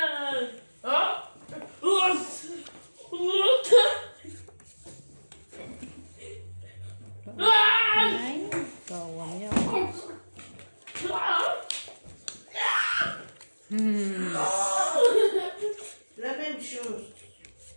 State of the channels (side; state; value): both; inverted; correlation -1.00